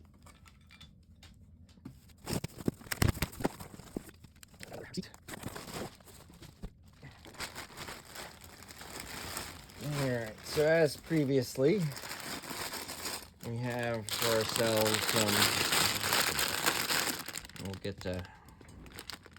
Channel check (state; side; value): identical; both; correlation 1.00